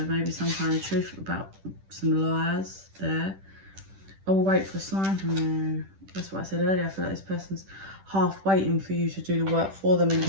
maybe some kind of truth about some lies there. I will wait for a sign from you. That's what I said earlier. I feel like this person's half waiting for you to do the work for them and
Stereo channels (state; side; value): late; left; 10 ms